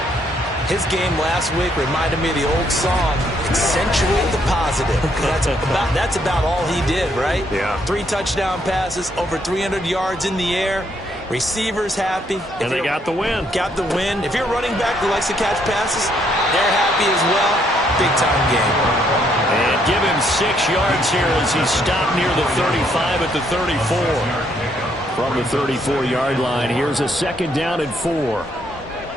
His game last week reminded me of the old song, Accentuate the Positive. That's about all he did, right? Yeah. 3 touchdown passes, over 300 yards in the air. Receivers happy. And they got the win. Got the win. If you're a running back who likes to catch passes, they're happy as well. Big-time game. And give him 6 yards here as he stopped near the 35 at the 34. From the 34-yard line, here's a 2nd down and 4.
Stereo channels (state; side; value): normal; both; correlation 0.71